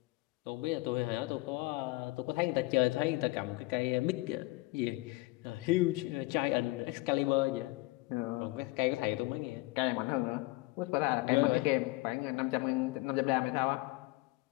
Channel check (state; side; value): quieter; right; 21.9 dB